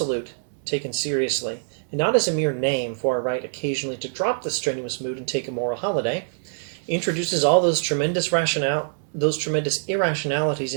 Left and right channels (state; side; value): silent; left; digital silence